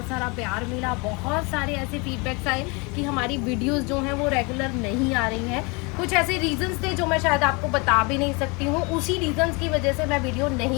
सारा प्यार मिला, बहुत सारे ऐसे फीडबैक्स आए कि हमारी वीडियोस जो हैं वो रेगुलर नहीं आ रही हैं। कुछ ऐसे रीजंस थे जो मैं शायद आपको बता भी नहीं सकती हूँ। उसी रीजंस की वजह से मैं वीडियो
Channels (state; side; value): quieter; right; 29.2 dB